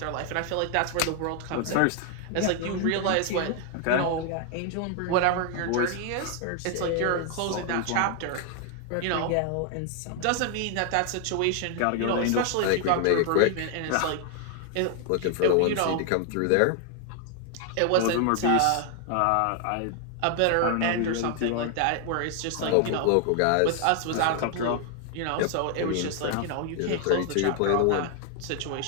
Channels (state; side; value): different; both; correlation 0.00